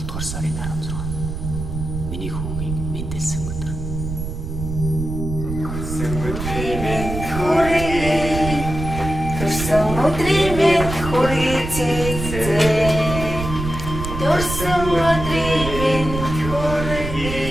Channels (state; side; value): noise; right; rumble, 6 dB below the sound